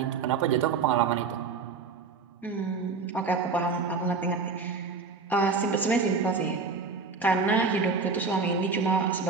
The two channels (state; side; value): quieter; left; 4.8 dB